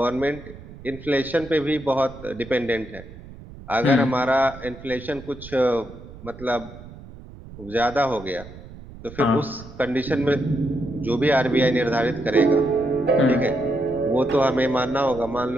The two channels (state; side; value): noise; right; rumble, 16 dB below the sound